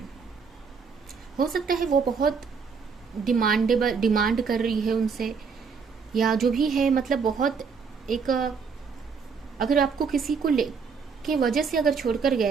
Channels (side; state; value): left; quieter; 5.6 dB